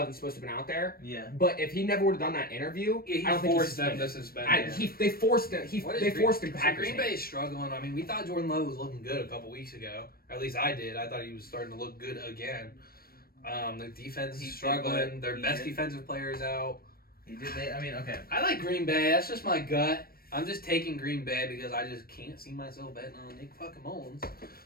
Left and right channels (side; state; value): right; late; 0.44 ms